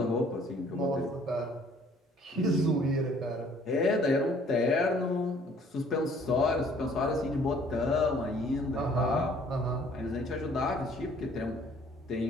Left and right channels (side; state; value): both; normal; correlation 0.57